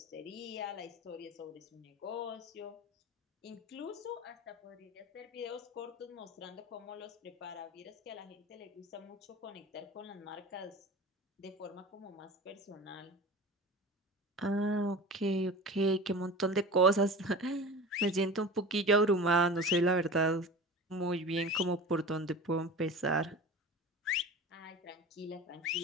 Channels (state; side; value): normal; both; correlation 0.34